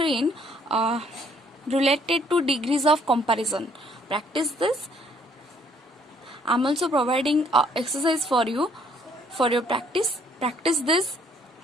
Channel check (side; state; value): both; normal; correlation 0.64